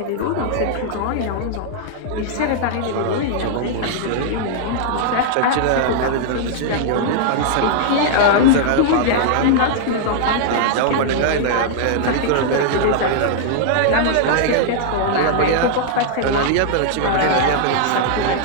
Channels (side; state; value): both; different; correlation -0.01